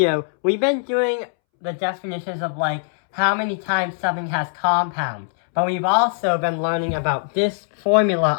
we've been doing the definitions of how many times something has compound. But we've also been learning about this formula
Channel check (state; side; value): silent; right; 65 dB below the other